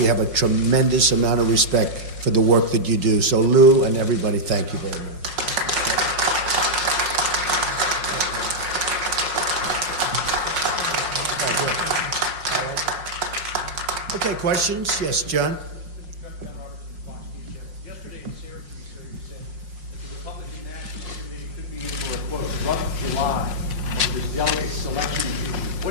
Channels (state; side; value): late; left; 5.5 ms